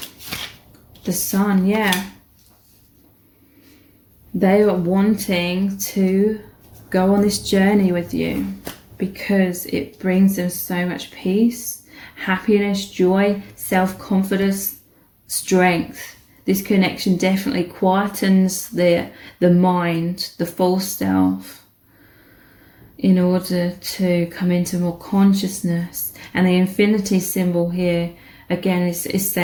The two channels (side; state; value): both; identical; correlation 1.00